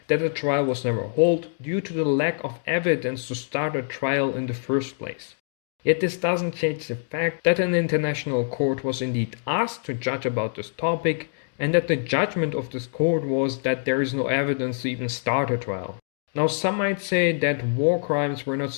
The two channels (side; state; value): right; silent; 62 dB below the other